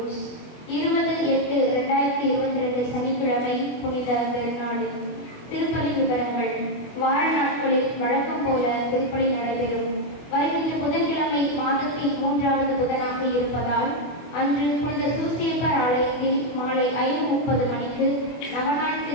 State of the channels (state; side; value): late; right; 24 ms